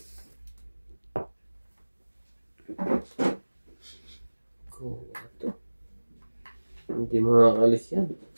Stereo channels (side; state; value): both; inverted; correlation -1.00